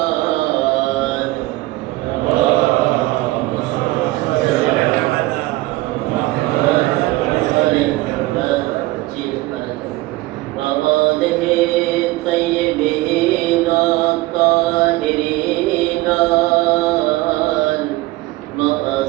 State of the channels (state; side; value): quieter; left; 19.6 dB